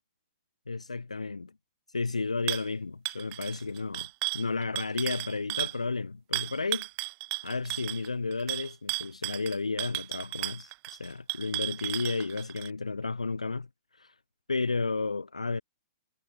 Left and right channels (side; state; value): both; inverted; correlation -0.68